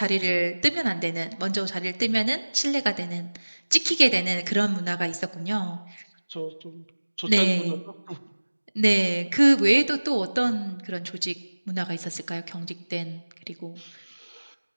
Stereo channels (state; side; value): inverted; both; correlation -1.00